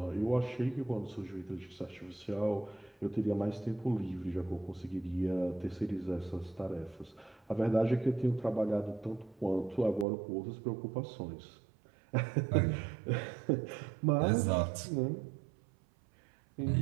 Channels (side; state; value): left; drops out; at 10.1 s